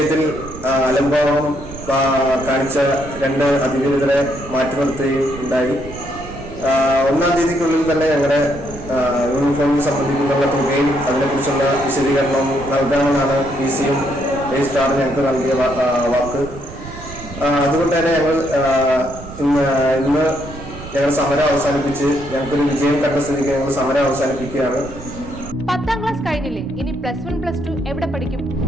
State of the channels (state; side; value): noise; right; rumble, 13 dB below the sound